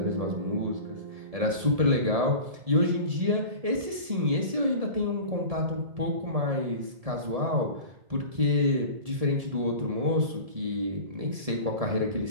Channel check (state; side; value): late; left; 1.7 ms